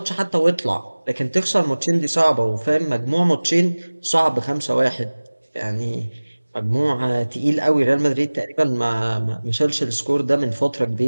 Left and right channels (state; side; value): inverted; both; correlation -1.00